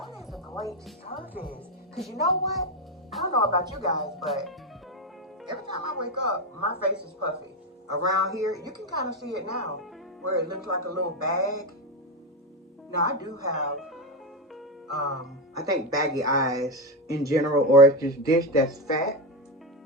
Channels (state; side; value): normal; both; correlation 0.11